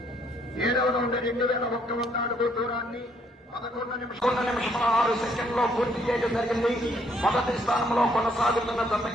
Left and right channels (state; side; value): normal; both; correlation 0.68